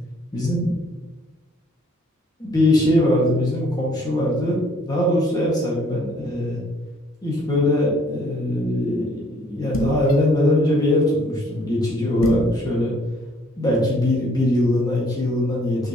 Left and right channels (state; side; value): normal; both; correlation 0.61